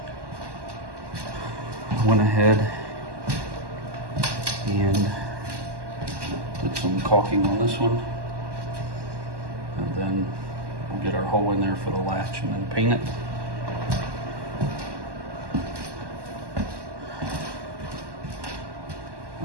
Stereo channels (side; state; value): left; late; 1.1 ms